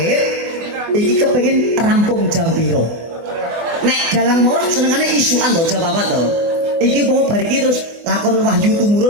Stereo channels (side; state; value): left; late; 24 ms